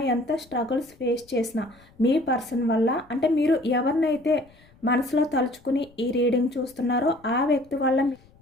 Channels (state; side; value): noise; left; rumble, 28 dB below the sound